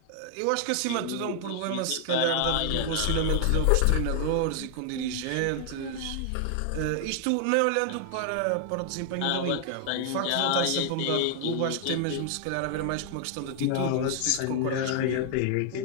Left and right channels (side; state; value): both; different; correlation 0.00